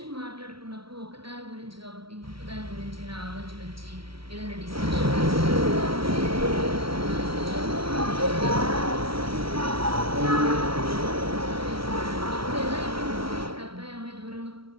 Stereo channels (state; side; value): late; left; 0.75 ms